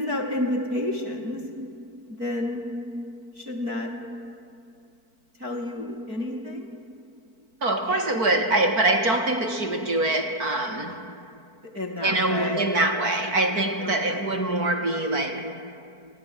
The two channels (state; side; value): late; left; 4.5 ms